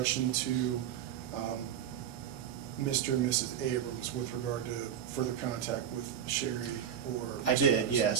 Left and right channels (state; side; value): quieter; left; 9.1 dB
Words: to Mr. and Mrs. Abrams with regard to further contact with Sherry or? I did, yes.